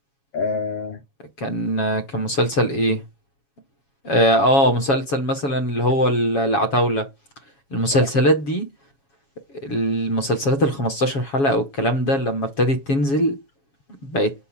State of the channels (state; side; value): late; right; 7.2 ms